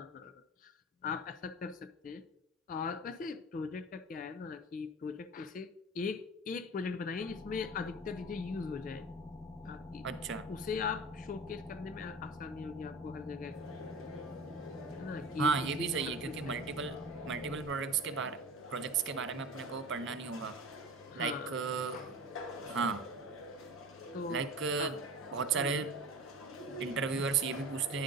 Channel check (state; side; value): normal; both; correlation 0.35